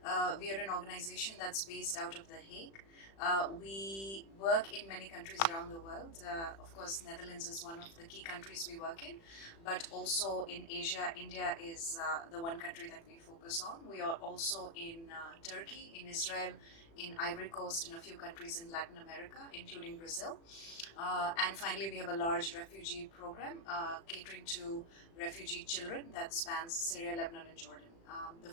We are an organization that's based out of The Hague. We work in many countries around the world. Of course, Netherlands is one of the key countries we work in, but also in Asia, India is the one country that we focus on. We are also in Turkey, in Israel, in Ivory Coast, in a few countries in Latin America, including Brazil. And finally, we have a large refugee program catering to refugee children that spans Syria, Lebanon, and Jordan. The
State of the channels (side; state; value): right; late; 36 ms